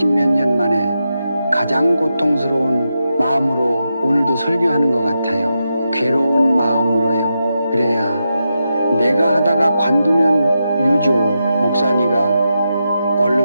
년 만에 가장 고통스러운 마음으로 오늘도 설교하는 것 같아요. 괴로운 마음으로요. 그래야 내가 하다가 관두면 유조 목사니가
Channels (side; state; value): both; inverted; correlation -0.87